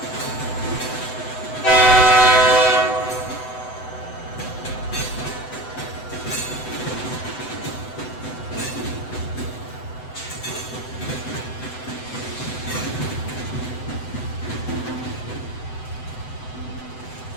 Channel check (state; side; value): late; right; 7.9 ms